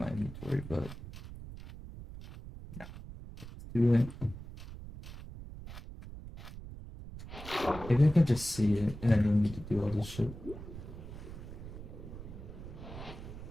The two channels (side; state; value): right; noise; rumble, 12 dB below the sound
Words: inventory, but no. Do it. Maybe I can just see it and I don't need to do all this shit.